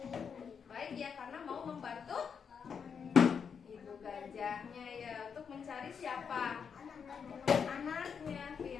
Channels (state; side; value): quieter; right; 6.6 dB